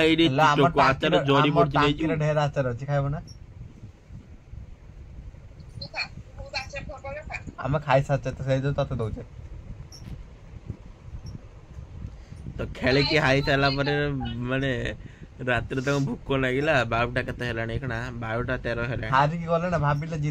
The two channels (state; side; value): identical; both; correlation 1.00